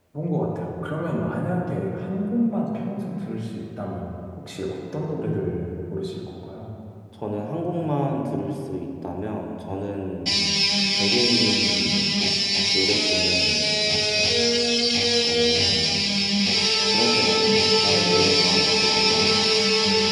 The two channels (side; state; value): both; identical; correlation 1.00